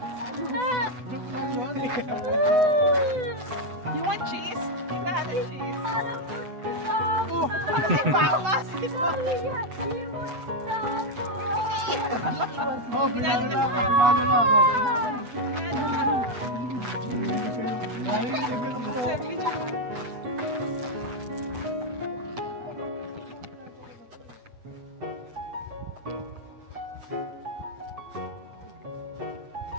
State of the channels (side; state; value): left; late; 8.0 ms